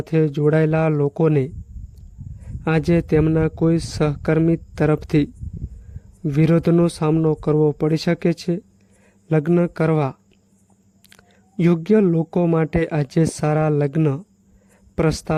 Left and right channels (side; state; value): both; identical; correlation 1.00